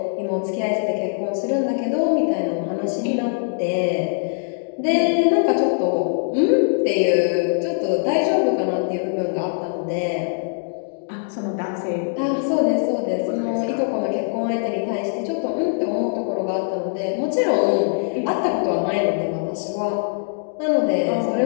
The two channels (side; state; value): right; silent; digital silence